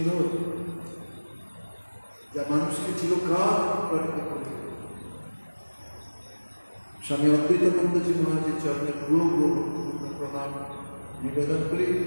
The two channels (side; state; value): both; inverted; correlation -1.00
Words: যা মানুষকে চিরকাল অনুপ্রাণিত করবে। স্বামী অদ্বৈতানন্দজি মহারাজের চরণে পূর্ব প্রণাম নিবেদন করি।